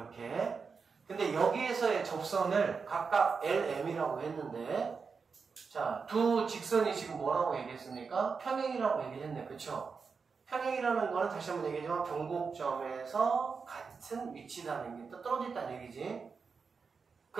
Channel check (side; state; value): left; quieter; 5.2 dB